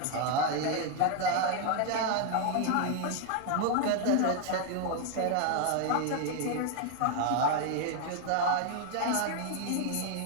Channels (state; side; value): different; both; correlation 0.01